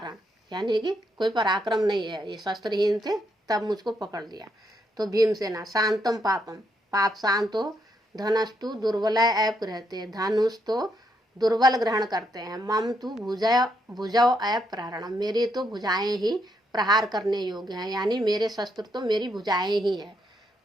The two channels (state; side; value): normal; both; correlation 0.77